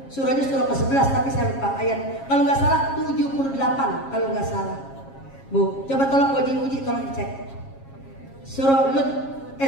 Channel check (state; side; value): late; right; 7.4 ms